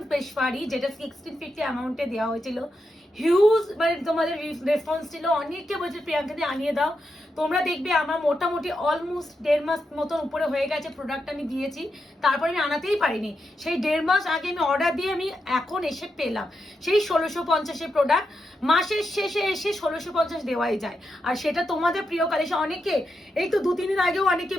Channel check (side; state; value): both; normal; correlation 0.86